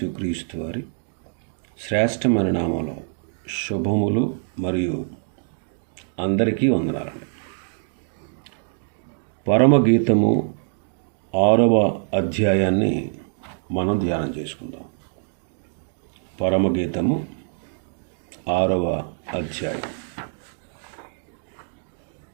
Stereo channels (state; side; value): silent; left; digital silence